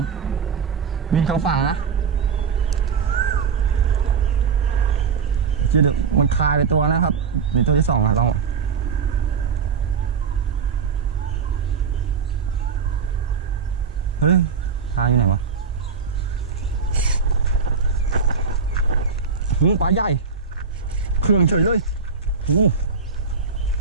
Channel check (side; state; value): left; quieter; 5.7 dB